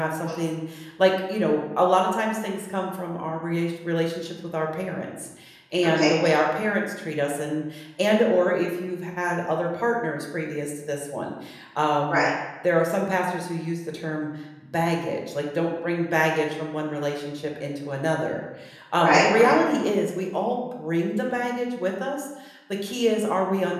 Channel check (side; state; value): both; identical; correlation 1.00